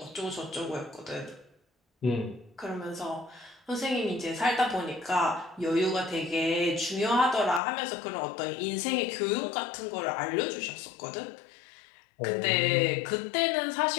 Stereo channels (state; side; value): drops out; right; at 7.6 s